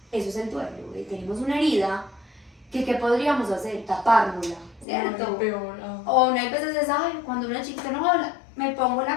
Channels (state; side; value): drops out; right; at 4.9 s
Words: eso es el duelo, tenemos una herida que ¿qué podríamos hacer? Tapárnosla, ¿cierto? No, peor. O una veces es, ay, cuando una chiquita no habla, me pongo